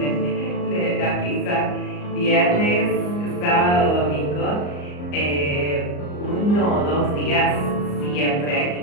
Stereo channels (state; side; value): late; right; 34 ms